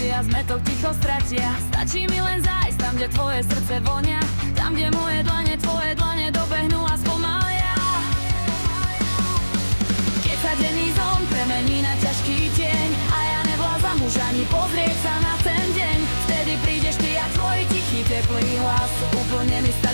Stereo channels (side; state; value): both; inverted; correlation -1.00